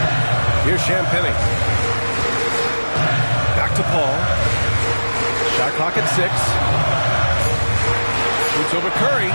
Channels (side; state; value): both; inverted; correlation -1.00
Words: Here's Champagnie. Back to Paul. Shot clock at 6. Shoots over Curry.